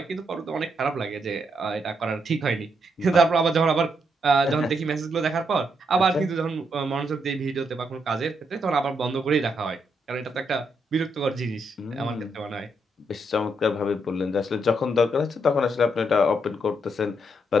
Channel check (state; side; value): normal; both; correlation 0.78